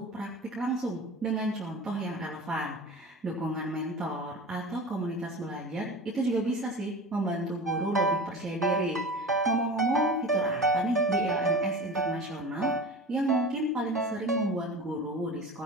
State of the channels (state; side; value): normal; both; correlation 0.34